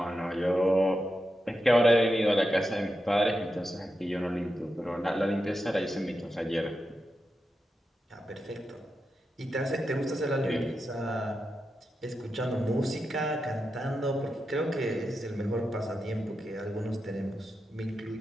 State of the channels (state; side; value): normal; both; correlation 0.88